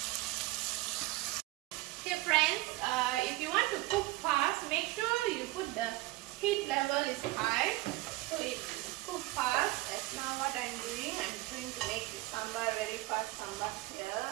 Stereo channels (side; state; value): left; quieter; 19.5 dB